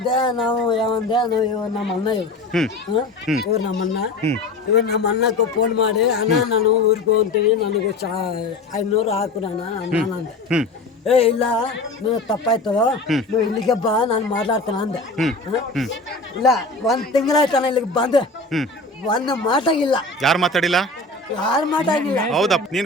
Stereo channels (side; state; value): right; quieter; 3.1 dB